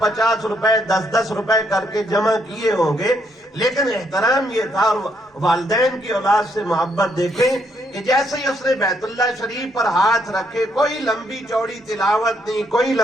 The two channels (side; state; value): both; normal; correlation 0.73